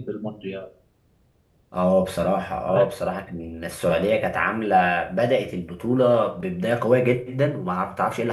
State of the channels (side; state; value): both; identical; correlation 1.00